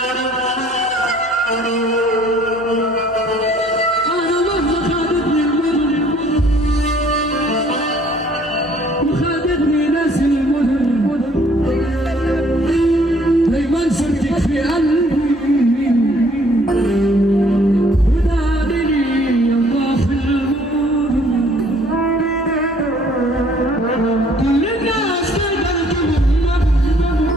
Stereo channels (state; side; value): normal; both; correlation 0.59